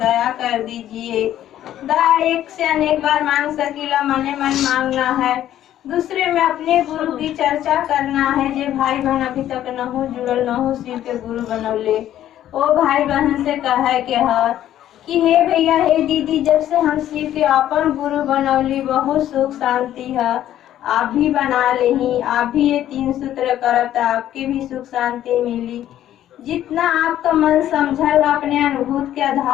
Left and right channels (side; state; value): right; quieter; 12.0 dB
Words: कर दीजिए। दया एक से अनेक बार मांग सकीला, मने मन मांगना है। दूसरे में अपने गुरु की चर्चा करना है। जे भाई बहन अभी तक न हो जुड़ल, न हो शिव के गुरु बनौले, ओ भाई बहन से कहे के है कि हे भैया, हे दीदी, जब से हम शिव के अपन गुरु बनौली, बहुत सुख शांति है। आप भी बना लेही, आप भी ये 3 सूत्र करब तो आपके भी सुख शांति मिली। जितना आपका मन समझल, अपने अनुभूत के